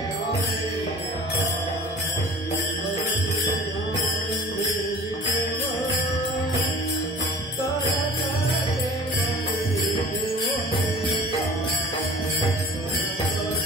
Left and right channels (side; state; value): both; normal; correlation 0.43